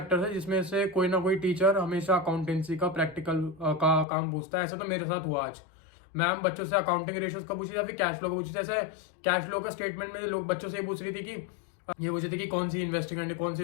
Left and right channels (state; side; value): drops out; right; at 4.0 s